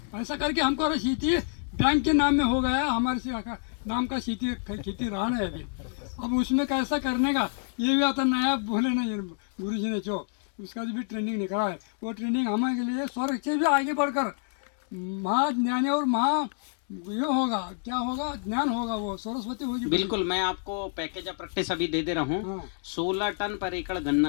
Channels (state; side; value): silent; right; 59 dB below the other